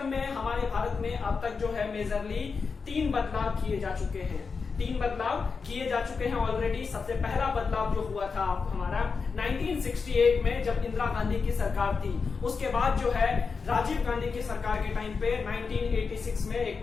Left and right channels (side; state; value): right; quieter; 5.1 dB